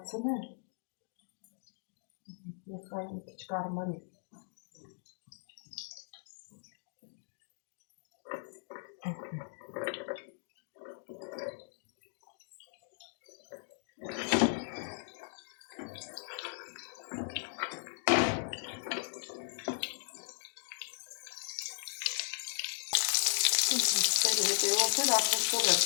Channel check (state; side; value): silent; right; digital silence